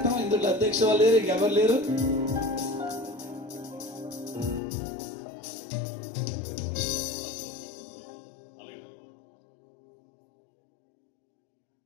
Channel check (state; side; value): drops out; right; at 4.6 s